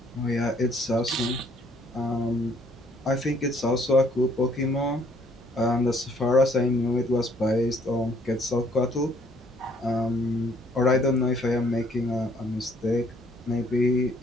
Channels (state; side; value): normal; both; correlation 0.63